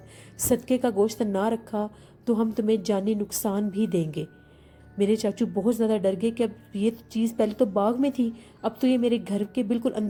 صدقے کا گوشت نہ رکھا تو ہم تمہیں جانی نقصان بھی دیں گے۔ میرے چاچو بہت زیادہ ڈر گئے کہ اب یہ چیز پہلے تو باغ میں تھی، اب تو یہ میرے گھر کے بالکل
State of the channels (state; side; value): identical; both; correlation 1.00